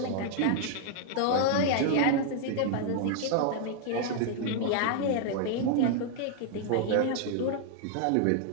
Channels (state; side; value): different; both; correlation 0.00